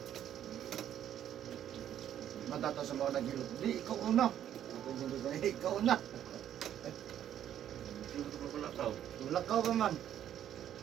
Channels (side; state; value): left; quieter; 10.7 dB